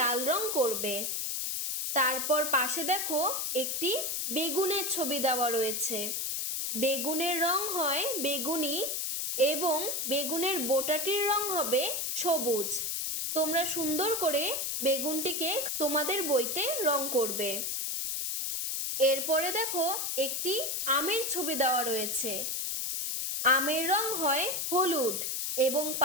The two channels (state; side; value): noise; left; hiss, 1 dB below the sound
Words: রং করবে। তারপর পাশে দেখো একটি বেগুনের ছবি দেওয়া রয়েছে। বেগুনের রং হয় বেগুনি এবং বেগুনের বোটাটির রং হবে সবুজ। তোমরা সুন্দর করে বেগুনটিকে তোমাদের বইতে রং করবে। এরপরে দেখো একটি আমের ছবি দেওয়া রয়েছে। আমের রং হয় হলুদ এবং